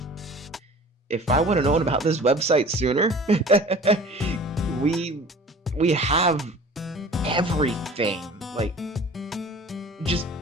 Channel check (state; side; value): normal; both; correlation 0.44